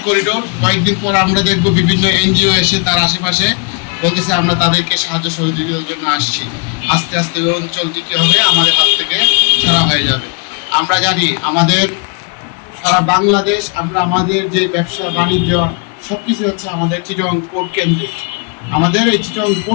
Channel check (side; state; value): right; quieter; 35.2 dB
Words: করিডোর, কয়েকদিন পর আমরা দেখব বিভিন্ন এনজিও এসে তার আশেপাশে বলতেছে আমরা তাদেরকে সাহায্য সহযোগিতার জন্য আসছি। আস্তে আস্তে ওই অঞ্চলটি কী হবে, আমাদের হাত থেকে ছাড়া হয়ে যাবে। আমরা জানি আমাদের সারা বাংলাদেশ, আমরা আমাদের যে ব্যবসা বাণিজ্য সব কিছু হচ্ছে আমাদের চিটং পোর্ট কেন্দ্রে। আমাদের এই চিটং